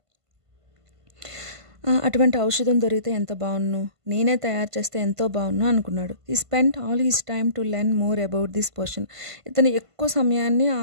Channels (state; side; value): late; left; 1.5 ms